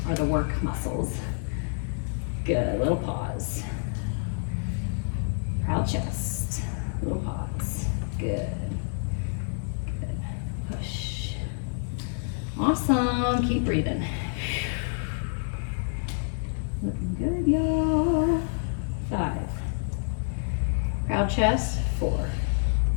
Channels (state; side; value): silent; right; digital silence